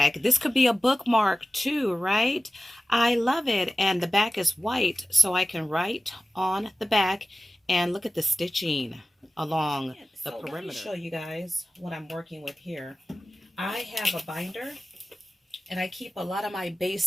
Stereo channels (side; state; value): both; normal; correlation 0.94